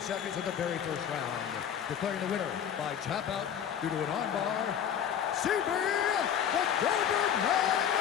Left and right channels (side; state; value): right; quieter; 8.8 dB